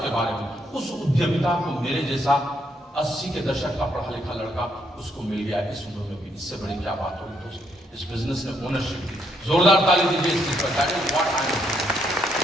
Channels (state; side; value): normal; both; correlation 0.74